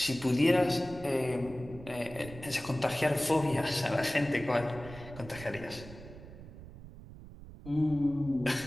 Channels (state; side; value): noise; right; rumble, 15 dB below the sound